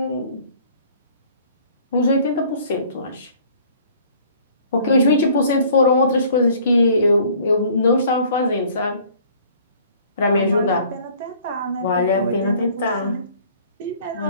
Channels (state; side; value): inverted; both; correlation -0.54